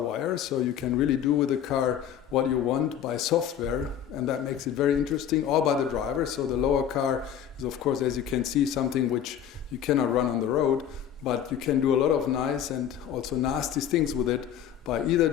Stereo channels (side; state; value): right; quieter; 9.5 dB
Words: so you can really do with the car what you want by software, and that makes it very interesting, or by the driver. So the lower car is, of course, as you can see, something which you cannot run on the road, but you can do a lot of nice and also nasty things with it by either